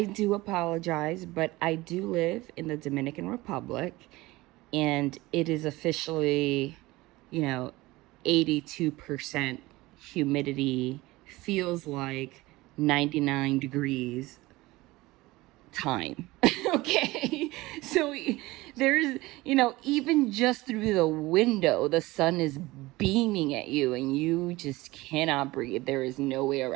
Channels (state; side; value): quieter; left; 20.0 dB